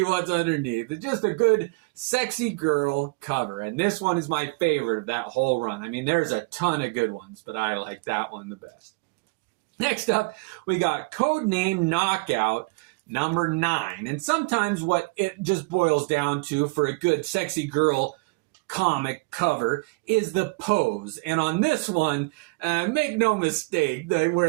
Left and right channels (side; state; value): left; quieter; 27.0 dB